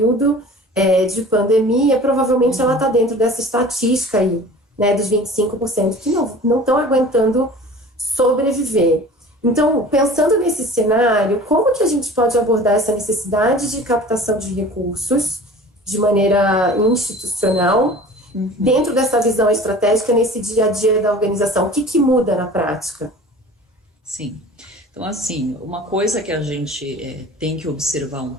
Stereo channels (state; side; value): normal; both; correlation 0.42